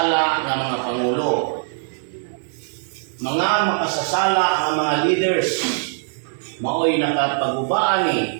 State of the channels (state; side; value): silent; left; digital silence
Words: nga mga pangulo. Mga makasasala nga mga leaders maoy nakapagubaan